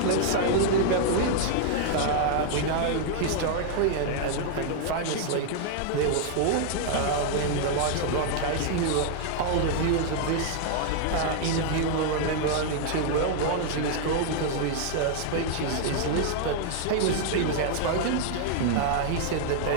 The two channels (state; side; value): different; both; correlation 0.00